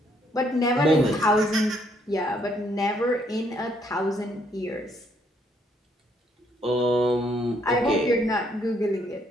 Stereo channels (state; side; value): normal; both; correlation 0.70